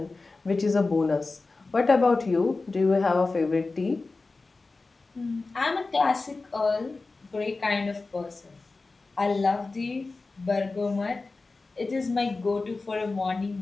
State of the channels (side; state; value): right; quieter; 3.7 dB